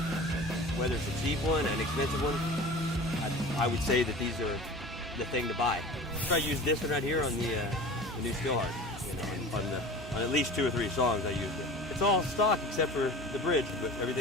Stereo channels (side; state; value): both; normal; correlation 0.37